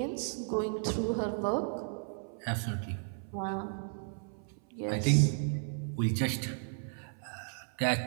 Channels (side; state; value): left; silent; 55 dB below the other